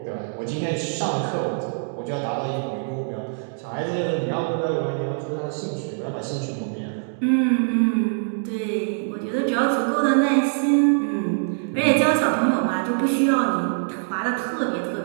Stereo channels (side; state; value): left; silent; digital silence